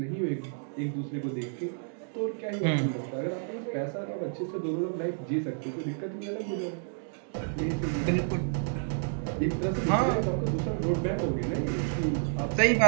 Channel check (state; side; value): silent; left; digital silence